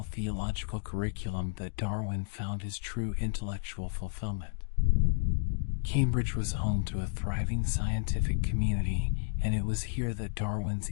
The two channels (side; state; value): right; silent; digital silence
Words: theological curriculum that Darwin found his true intellectual fulfillment. Cambridge was home to a thriving scientific community, and it was here that Darwin's